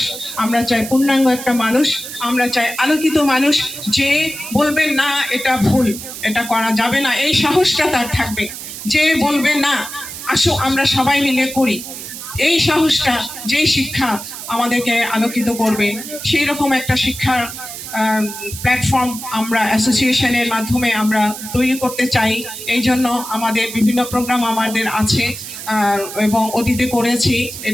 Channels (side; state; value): right; noise; hiss, 10 dB below the sound